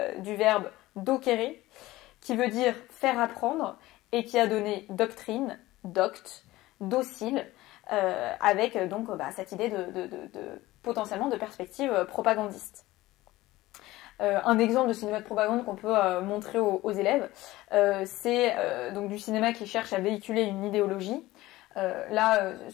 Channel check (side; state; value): right; quieter; 17.8 dB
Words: du verbe docere, qui veut dire faire apprendre, et qui a donné doctrine, doct, docile, avec donc cette idée potentiellement de perspective propagandiste. Un exemple de cinéma de propagande qu'on peut montrer aux élèves, c'est donc du cinéma qui cherche à véhiculer une idéologie.